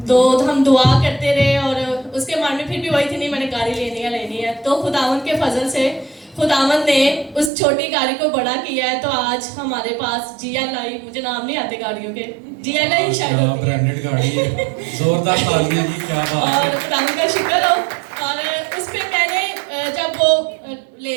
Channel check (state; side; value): drops out; left; at 7.5 s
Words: تو ہم دعا کرتے رہے اور اس کے من میں پھر بھی وہی تھی نہیں میں نے گاڑی لینی ہے. تو خداوند کے فضل سے خداوند نے اس چھوٹی گاڑی کو بڑا کیا ہے. تو آج ہمارے پاس جی ایل آئی, مجھے نام نہیں آتے گاڑیوں کے, جی ایل آئی شاید ہوتی ہے, برانڈڈ گاڑی ہے, زوردار تالیاں جی, کیا بات ہے. اور خداوند کا شکر ہو. اور اس پہ میں نے جب وہ